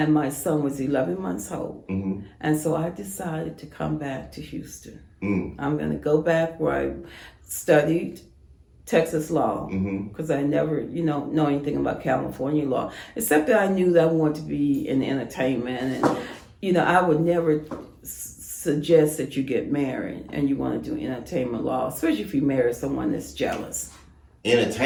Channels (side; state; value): both; identical; correlation 1.00